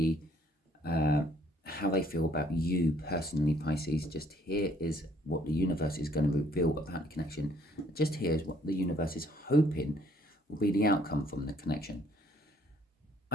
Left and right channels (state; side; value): normal; both; correlation 0.64